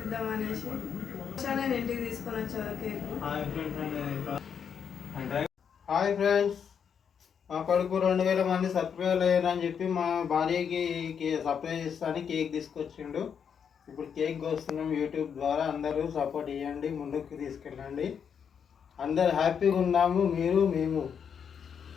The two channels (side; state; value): right; quieter; 7.3 dB